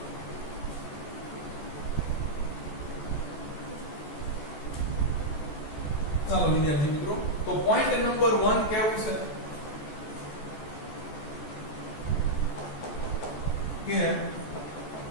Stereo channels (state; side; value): late; right; 14 ms